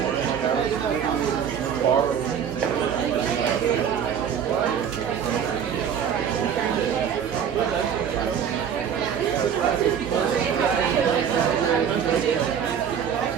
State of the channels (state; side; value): quieter; left; 8.1 dB